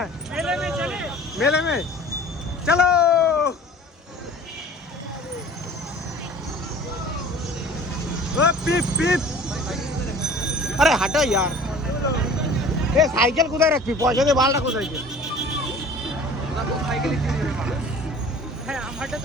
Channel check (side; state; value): both; normal; correlation 0.45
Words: मेले में चलो पीप पीप अरे हटा यार ए साइकिल कुदार रखबी पैसा दे बाल रखो साइकिल